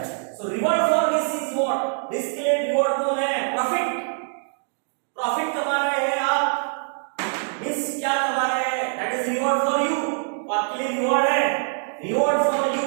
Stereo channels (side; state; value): left; silent; digital silence